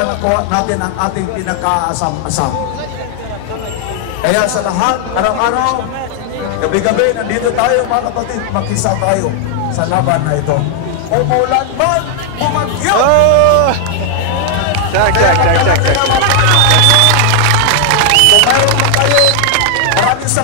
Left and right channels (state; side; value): different; both; correlation 0.00